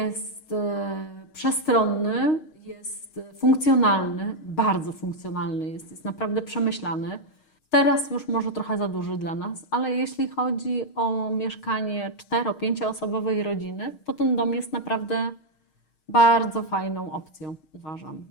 przestronny, jest funkcjonalny, bardzo funkcjonalny jest naprawdę przemyślany. Teraz już może trochę za duży dla nas, ale jeśli chodzi o mieszkanie 4-5-osobowej rodziny, to ten dom jest naprawdę bardzo fajną opcją, uważam.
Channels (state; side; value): late; right; 6.4 ms